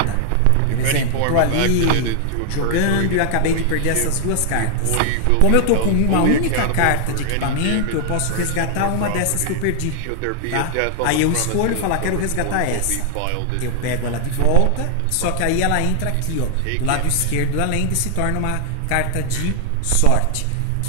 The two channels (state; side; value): different; both; correlation 0.00